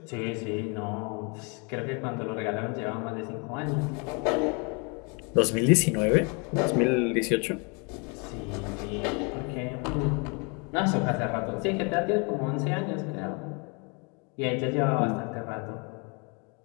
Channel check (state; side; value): quieter; right; 33.1 dB